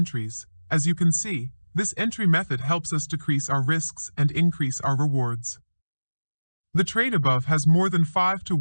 As you can see, this entry method helps us decrease our risks and increase our rewards. The trade above has more than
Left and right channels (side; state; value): both; inverted; correlation -1.00